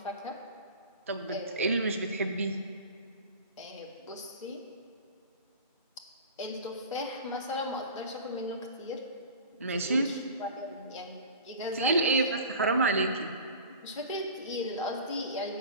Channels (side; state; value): both; inverted; correlation -0.37